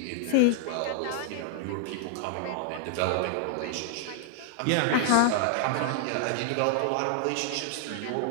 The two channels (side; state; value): both; different; correlation -0.01